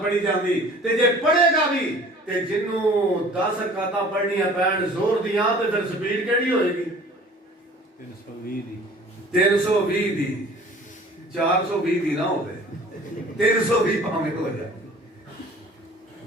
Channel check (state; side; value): normal; both; correlation 0.48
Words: پڑھی جاندی تے جے پڑھے گا بھی تے جنوں 10 رکعتاں پڑھنیاں پین زور دیاں تے پھر سپیڈ کیڑی ہوئے گی 320 دی 420 دی نہ ہوے 320 پاویں ہو جائے